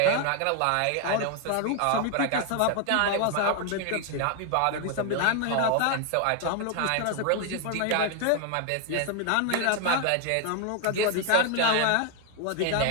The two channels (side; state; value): both; different; correlation 0.00